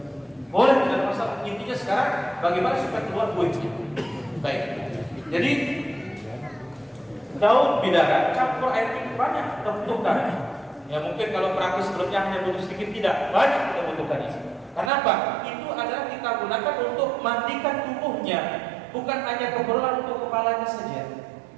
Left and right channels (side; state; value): left; drops out; at 14.9 s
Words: Boleh, tidak ada masalah. Intinya sekarang bagaimana supaya keluar buahnya. Baik. Jadi daun bidara campur air itu banyak kita butuhkan. Ya mungkin kalau praktis sebelumnya hanya butuh sedikit, tidak banyak kita butuhkan itu. Kenapa? Itu adalah kita gunakan untuk mandikan tubuhnya, bukan hanya keperluan untuk kepalanya saja.